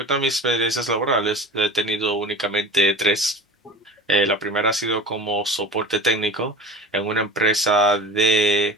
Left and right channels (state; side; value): normal; both; correlation 0.37